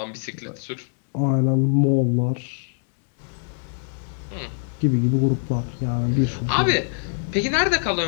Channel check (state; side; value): silent; right; digital silence